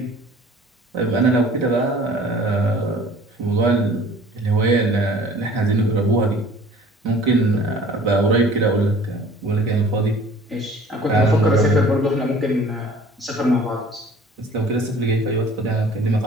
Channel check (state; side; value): normal; both; correlation 0.49